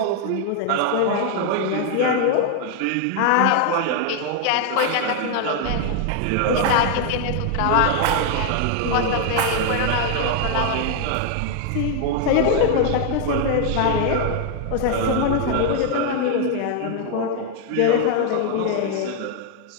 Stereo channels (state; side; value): different; both; correlation 0.00